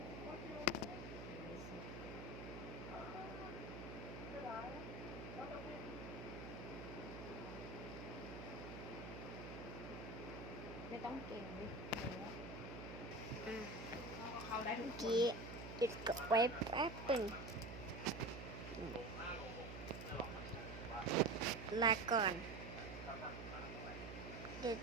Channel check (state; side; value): noise; right; hum, 8 dB below the sound